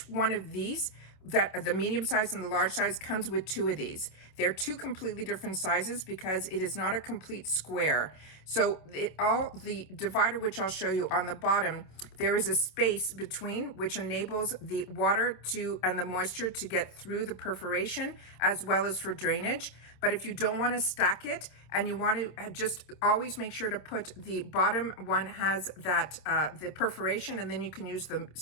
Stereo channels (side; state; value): right; late; 27 ms